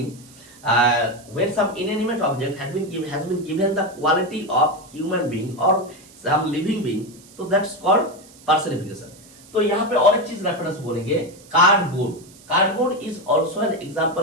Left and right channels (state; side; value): noise; right; hiss, 23 dB below the sound